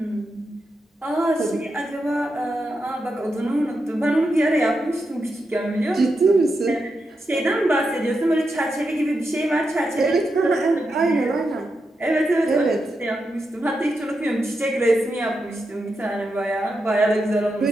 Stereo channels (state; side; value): normal; both; correlation 0.86